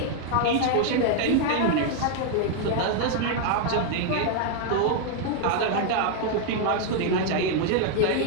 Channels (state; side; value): different; both; correlation 0.00